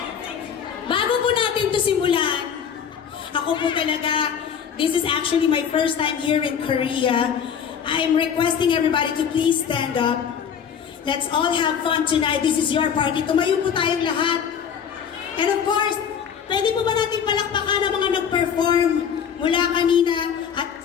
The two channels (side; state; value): right; quieter; 7.7 dB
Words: Bago po natin to simulan, ako po talaga, this is actually my first time here in Korea. I'm requesting everybody to please stand up. Let's all have fun tonight. This is your party. Tumayo po tayong lahat. And of course, pwede po ba natin palakpakan ang mga nag-perform mula kanina at